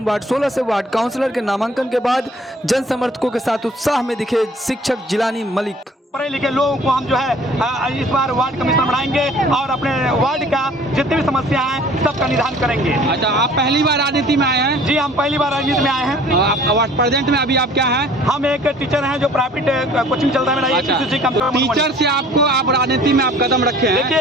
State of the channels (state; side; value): normal; both; correlation 0.52